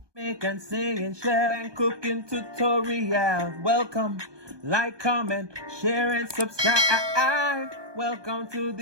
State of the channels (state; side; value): late; left; 1.2 ms